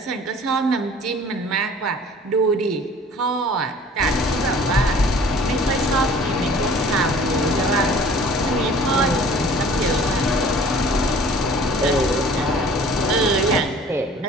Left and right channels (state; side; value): normal; both; correlation 0.49